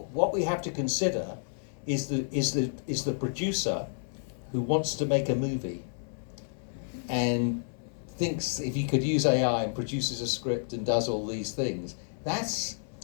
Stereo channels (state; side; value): silent; right; 57 dB below the other